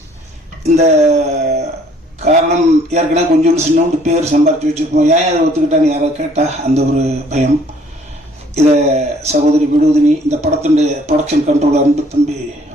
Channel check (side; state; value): both; normal; correlation 0.60